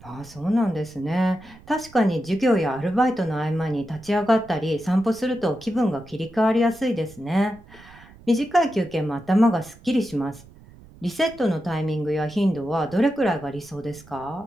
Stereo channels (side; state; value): right; noise; rumble, 23 dB below the sound